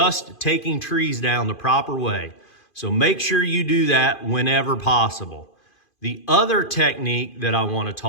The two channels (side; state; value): right; late; 2.5 ms